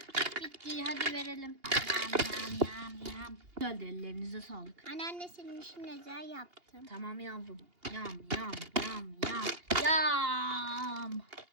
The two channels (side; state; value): left; late; 2.8 ms